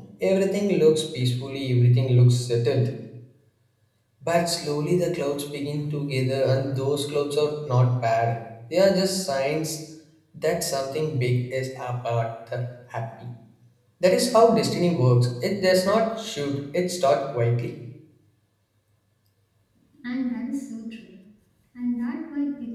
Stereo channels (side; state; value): both; identical; correlation 1.00